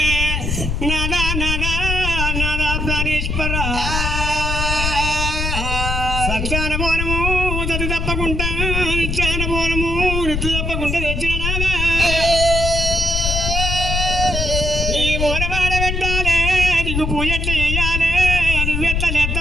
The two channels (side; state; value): left; noise; rumble, 1 dB below the sound